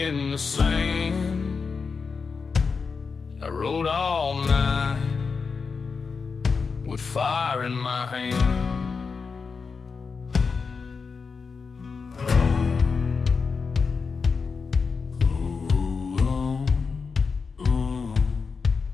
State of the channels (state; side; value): quieter; right; 5.1 dB